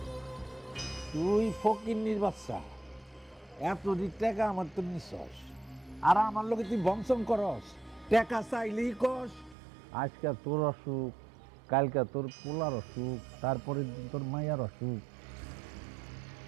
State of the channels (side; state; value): left; drops out; at 9.6 s